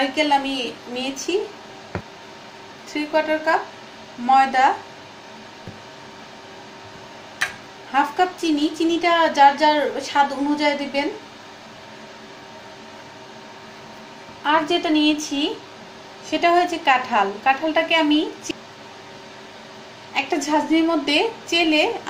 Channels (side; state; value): both; identical; correlation 1.00